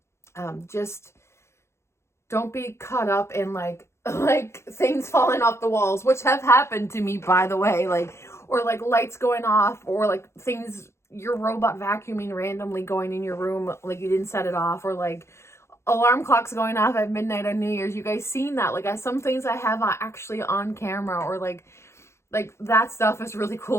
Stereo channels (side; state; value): right; late; 0.13 ms